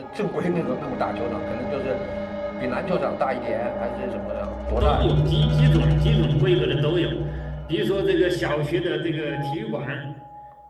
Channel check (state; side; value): identical; both; correlation 1.00